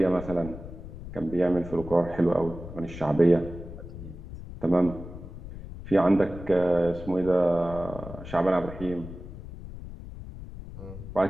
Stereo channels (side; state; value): left; noise; rumble, 12 dB below the sound